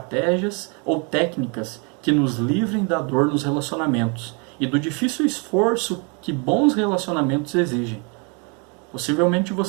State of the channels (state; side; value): quieter; left; 33.8 dB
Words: ou técnicas que nos livrem da dor nos relacionamentos e do difícil esforço que bons relacionamentos exigem. Possivelmente